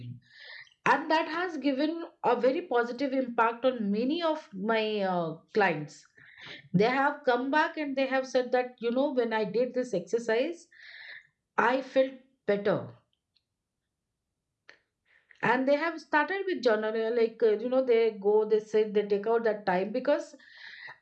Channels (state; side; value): identical; both; correlation 1.00